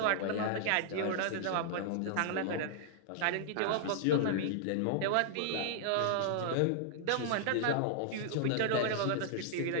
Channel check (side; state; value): both; different; correlation -0.01